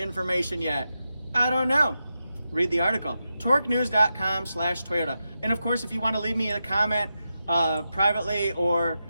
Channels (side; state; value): both; inverted; correlation -0.89